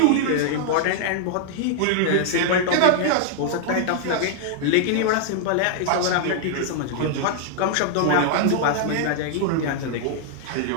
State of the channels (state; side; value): different; both; correlation -0.01